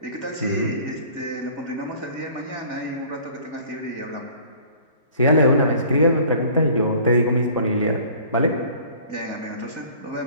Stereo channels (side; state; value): both; inverted; correlation -0.50